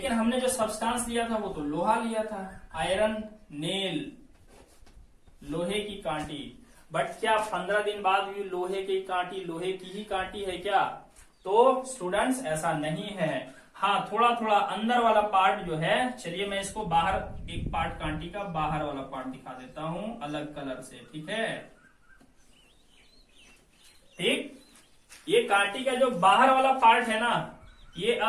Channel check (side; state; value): both; identical; correlation 1.00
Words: हमने जो सब्सटेंस लिया था वो तो लोहा लिया था, आयरन नेल, लोहे की कांटी। बट क्या 15 दिन बाद भी लोहे की कांटी लोहे की ही कांटी है क्या, तो स्टूडेंट्स ऐसा नहीं है। हाँ, थोड़ा थोड़ा अंदर वाला पार्ट जो है, चलिए मैं इसको बाहर, एक पार्ट कांटी का बाहर वाला पार्ट दिखा देता हूं अलग कलर से। ठीक है, ठीक, ये कांटी का जो बाहर वाला पार्ट है ना, ये